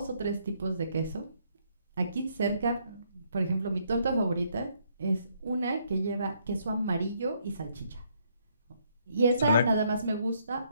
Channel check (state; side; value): inverted; both; correlation -0.70